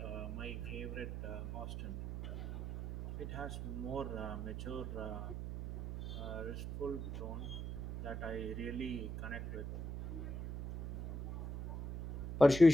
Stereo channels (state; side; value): noise; right; hum, 6 dB below the sound